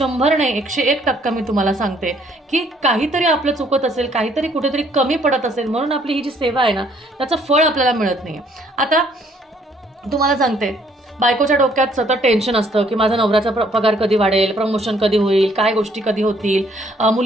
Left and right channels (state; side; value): normal; both; correlation 0.64